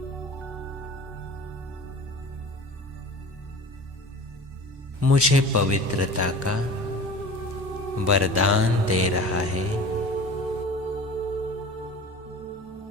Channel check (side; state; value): both; normal; correlation 0.39